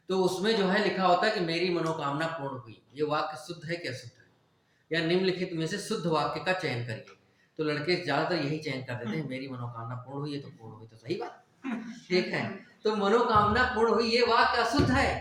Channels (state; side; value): identical; both; correlation 1.00